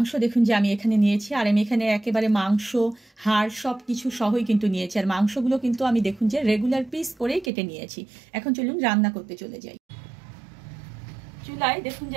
দেখুন যে আমি এখানে নিয়েছি। আর আমি এখানে একেবারে মাংস, হাড় সব কিছু সহই কিন্তু নিয়েছি। আর মাংসগুলো কিন্তু আমি দেখুন যে রেগুলার পিস করেই কেটে নিয়েছি। এখন চলুন রান্না করতে চলে যাই। চুলায় দেখুন যে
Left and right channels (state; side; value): drops out; left; at 7.5 s